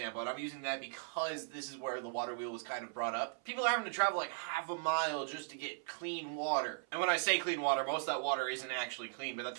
and I'm using that because this is where the WaterWheel was kind of brought up. People are having to travel like half a mile just to get clean water. And when I say clean water, most of that water isn't actually clean, but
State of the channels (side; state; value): left; silent; 52 dB below the other